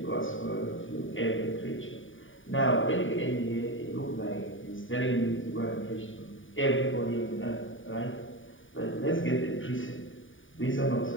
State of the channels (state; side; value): late; right; 0.57 ms